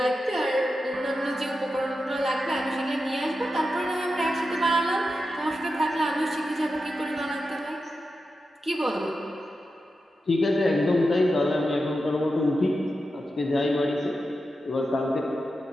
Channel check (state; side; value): normal; both; correlation 0.90